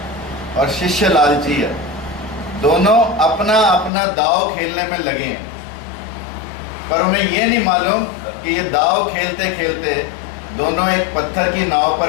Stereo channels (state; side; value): drops out; right; at 3.9 s